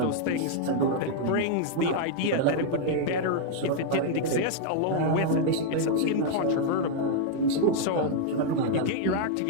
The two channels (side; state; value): both; different; correlation -0.01